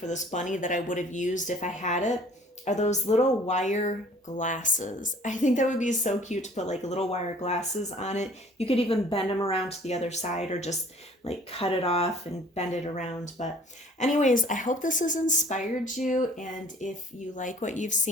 this bunny that I would have used if I had it are those little wire glasses. I think that would be so cute to put like little wire glasses on it. You could even bend them around to the other side or just like cut it off and bend it around. But anyways, I hope this has inspired you. And if you like what you've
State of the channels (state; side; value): normal; both; correlation 0.52